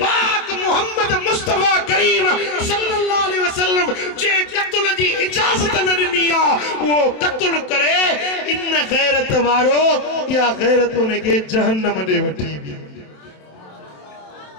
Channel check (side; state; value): right; late; 27 ms